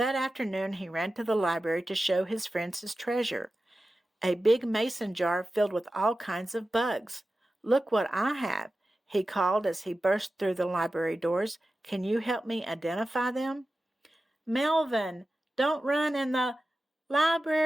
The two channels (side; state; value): both; normal; correlation 0.94